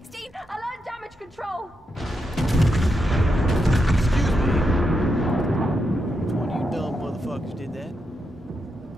Alert damage control. Excuse me. Which one of you dumb motherfuckers did that?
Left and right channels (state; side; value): normal; both; correlation 0.84